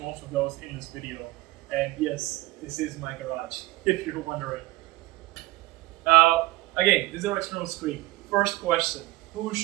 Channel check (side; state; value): left; quieter; 19.3 dB